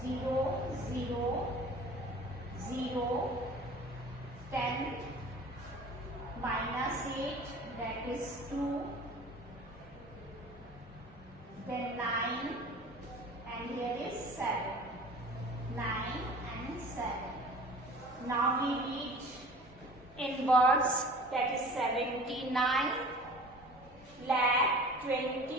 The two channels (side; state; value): both; normal; correlation 0.43